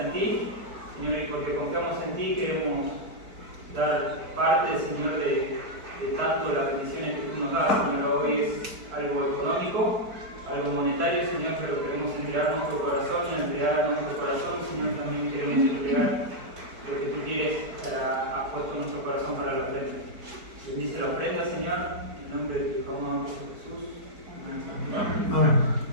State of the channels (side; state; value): left; late; 4.5 ms